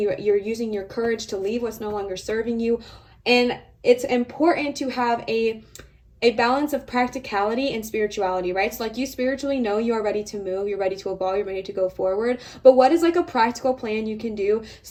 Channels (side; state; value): both; identical; correlation 1.00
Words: using your courage to leave what's no longer serving you. And it's important to have a balance of practicality and spirituality, right? So like, you spiritually know you are ready to move, you're ready to evolve, you're ready to go forward, but what is like a practical plan you can do